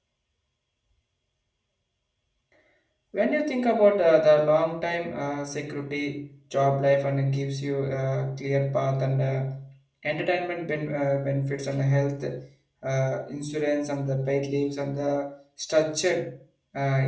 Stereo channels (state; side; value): identical; both; correlation 1.00